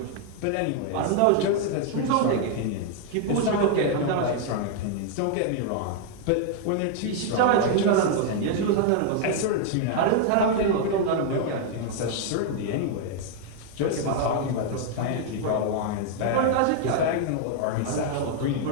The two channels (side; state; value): both; different; correlation 0.00